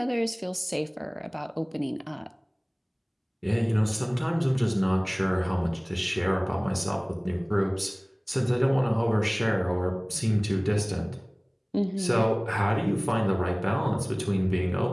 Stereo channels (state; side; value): identical; both; correlation 1.00